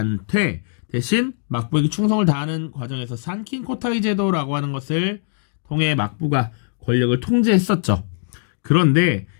대신 막부에게 충성을 다하는 과정에서 산킨 코타이 제도라고 하는 것을 통해 막부가 권력을 통제했었죠. 그런데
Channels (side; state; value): right; silent; digital silence